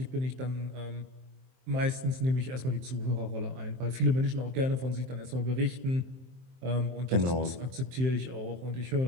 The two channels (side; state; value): left; late; 23 ms